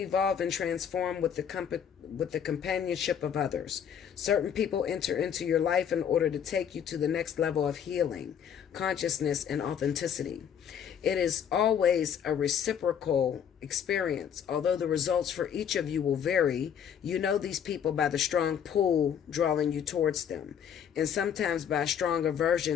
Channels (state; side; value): quieter; right; 8.4 dB